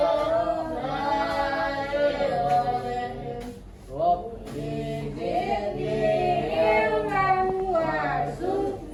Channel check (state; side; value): identical; both; correlation 1.00